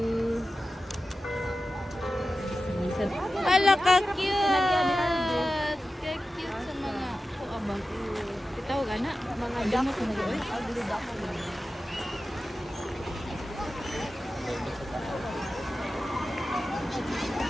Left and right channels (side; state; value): both; normal; correlation 0.93